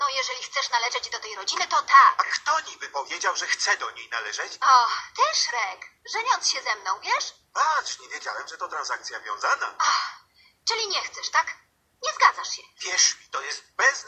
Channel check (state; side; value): identical; both; correlation 1.00